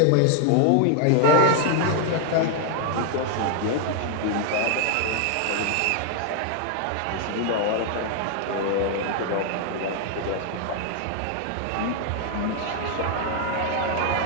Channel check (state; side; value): different; both; correlation 0.00